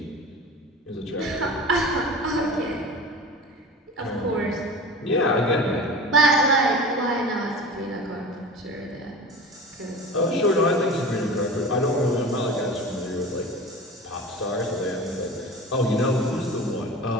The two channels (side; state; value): both; normal; correlation 0.34